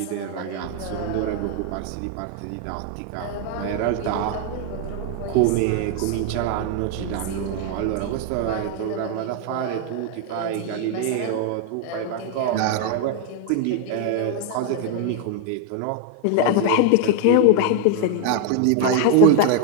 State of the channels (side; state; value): both; different; correlation 0.00